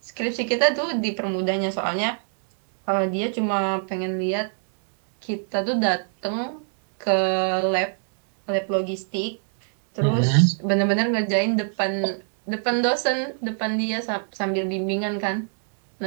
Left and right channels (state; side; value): silent; left; digital silence